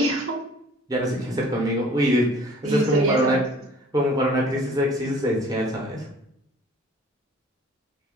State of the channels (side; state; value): both; normal; correlation 0.51